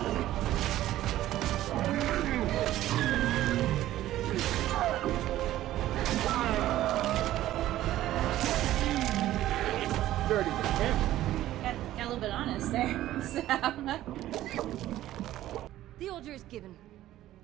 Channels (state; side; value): quieter; left; 14.1 dB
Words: Dirty Got a little bit honest there. So. The order is given.